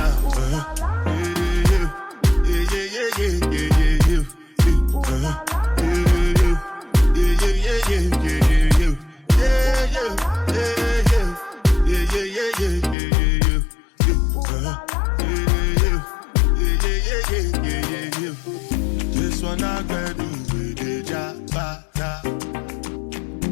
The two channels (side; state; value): right; drops out; at 13.0 s